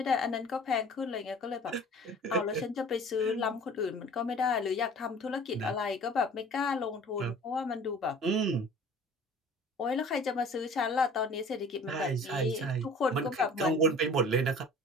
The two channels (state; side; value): normal; both; correlation 0.46